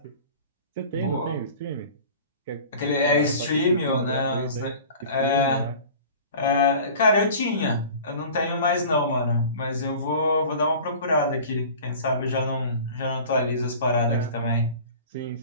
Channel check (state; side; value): inverted; both; correlation -0.41